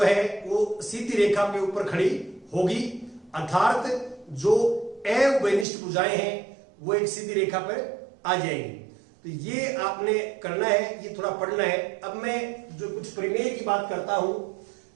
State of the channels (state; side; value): drops out; left; at 5.7 s